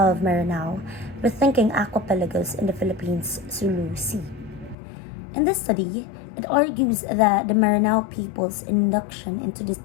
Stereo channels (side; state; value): right; drops out; at 4.8 s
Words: Maranao, Rethinking Aquapelagos in the Philippines Sulu Sea. In this study, it argues that the Maranao people's induction into the